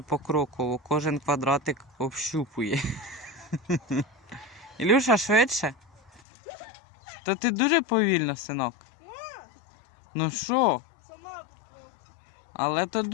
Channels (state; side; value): drops out; right; at 6.2 s